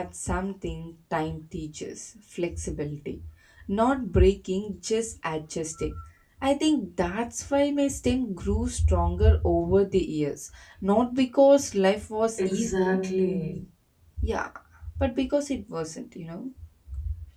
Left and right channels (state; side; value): identical; both; correlation 1.00